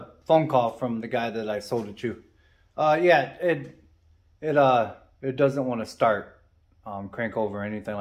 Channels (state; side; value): identical; both; correlation 1.00